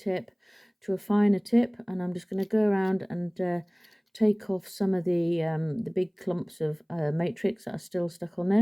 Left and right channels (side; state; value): both; identical; correlation 1.00